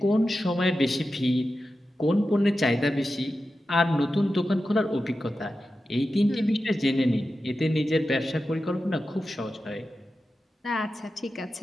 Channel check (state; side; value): normal; both; correlation 0.92